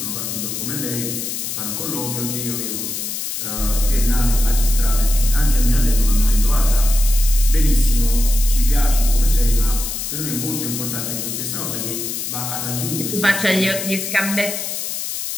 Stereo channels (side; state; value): left; noise; hiss, 5 dB below the sound